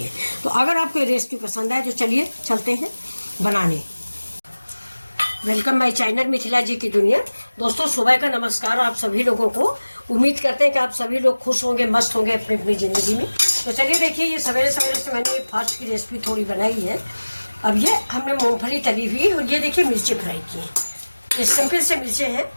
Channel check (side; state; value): both; inverted; correlation -1.00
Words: तो अगर आपको ये रेसिपी पसंद आए तो चलिए चलते हैं बनाने। वेलकम माय चैनल मिथिला जी की दुनिया। दोस्तों सुबह का नमस्कार आप सभी लोगों को। उम्मीद करते हैं कि आप सभी लोग खुश होंगे, मस्त होंगे अपनी अपनी ज़िंदगी में। तो चलिए देखिए, ये सवेरे सवेरे से मैंने ये फास्ट की रेसिपी थोड़ी बनाई है। अब ये हमने मूंगफली तली हुई और ये देखिए मिर्ची फ्राई की है। ये सिंपल से मिर्चें हैं,